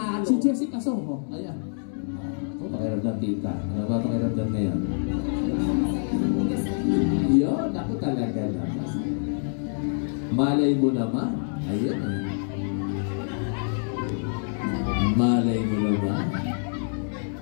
Si Jessica Soho. Ayan. Pakiramdam, tita. Ano ba pakiramdam na yan? Yun, ako talaga naman. Malay mo naman. Ayun eh. Malay mo naman.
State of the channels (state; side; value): silent; right; 61 dB below the other